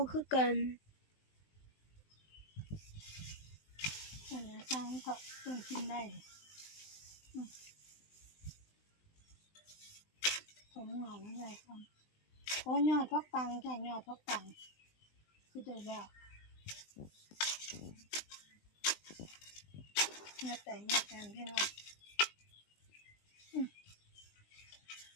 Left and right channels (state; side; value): late; right; 20 ms